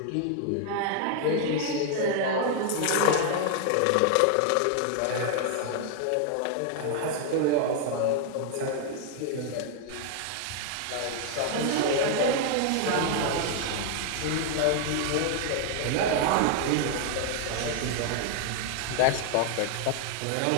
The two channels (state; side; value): different; both; correlation 0.00